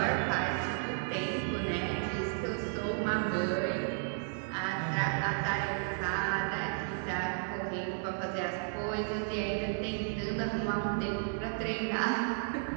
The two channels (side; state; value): left; silent; digital silence